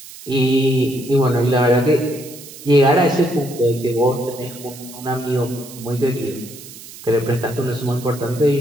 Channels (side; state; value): right; noise; hiss, 16 dB below the sound